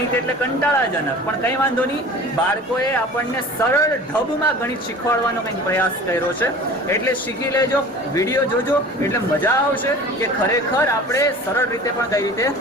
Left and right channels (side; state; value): both; normal; correlation 0.41